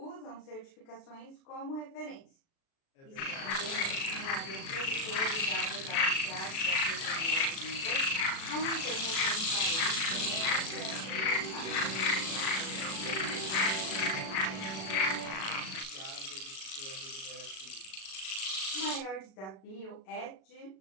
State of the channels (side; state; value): right; late; 37 ms